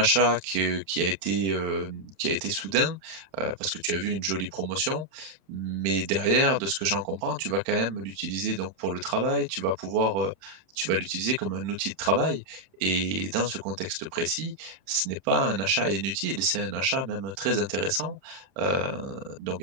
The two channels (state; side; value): late; left; 31 ms